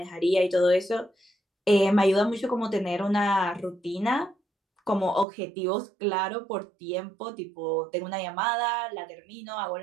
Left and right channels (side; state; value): left; drops out; at 5.2 s